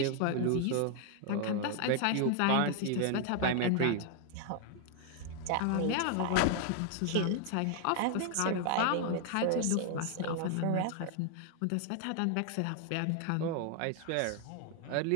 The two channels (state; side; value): different; both; correlation 0.00